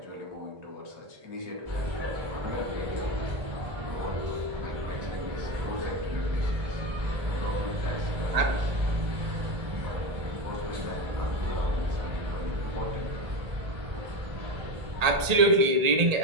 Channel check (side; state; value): left; late; 1.8 ms